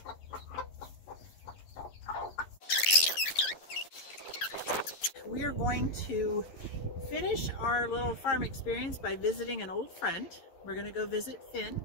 We are going to finish our little farm experience by visiting an old friend. We're going to go visit Finn,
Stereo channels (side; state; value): right; late; 11 ms